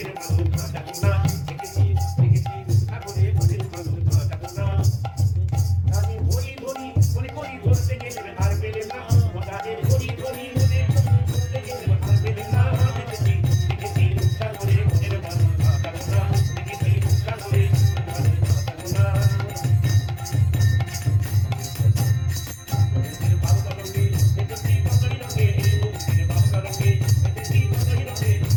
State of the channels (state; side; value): identical; both; correlation 1.00